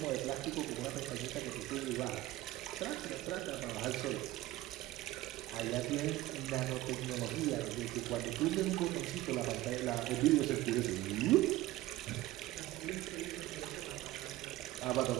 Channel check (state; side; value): quieter; left; 16.8 dB